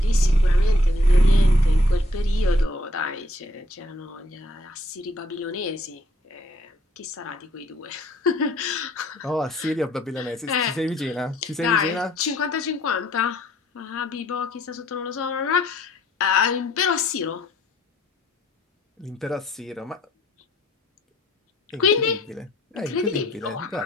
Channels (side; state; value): both; normal; correlation 0.65